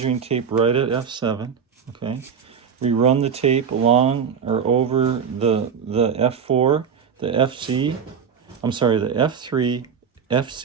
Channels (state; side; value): quieter; left; 6.9 dB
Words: tape right at F7. Okay, we run the tape along or over the F4, the FC. I'm sorry, the F3,